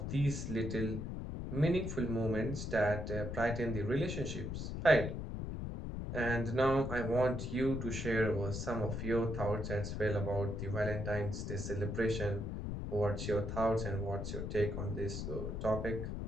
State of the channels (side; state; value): left; noise; rumble, 4 dB below the sound